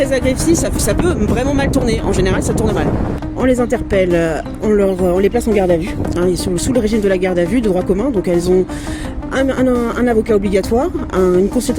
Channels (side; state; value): both; identical; correlation 1.00